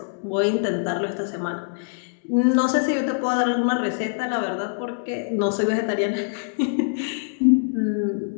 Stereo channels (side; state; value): right; silent; digital silence